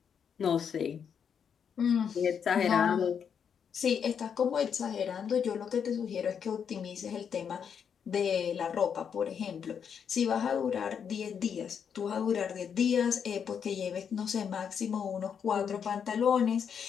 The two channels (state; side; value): quieter; right; 7.4 dB